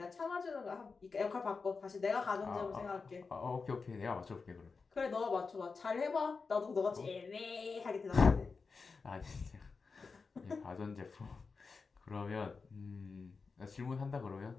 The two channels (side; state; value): right; quieter; 4.7 dB